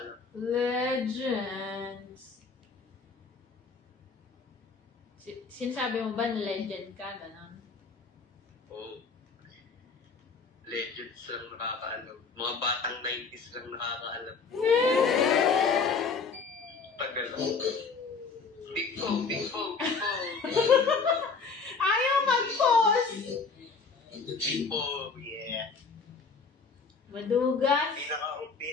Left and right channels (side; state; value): right; quieter; 4.9 dB